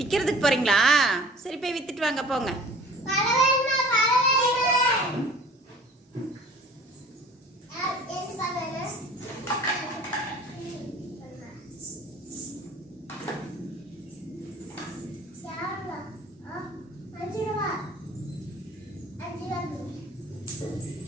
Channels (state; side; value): normal; both; correlation 0.47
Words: போகிறீங்களா? சரி போய் விற்றுட்டு வாங்க போங்க.